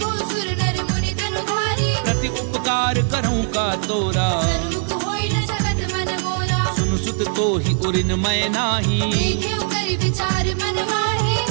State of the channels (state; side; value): silent; left; 58 dB below the other